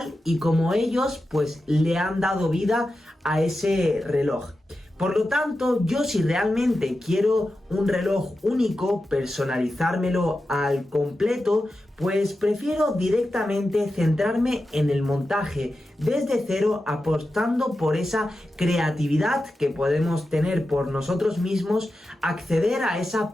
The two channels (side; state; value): both; normal; correlation 0.91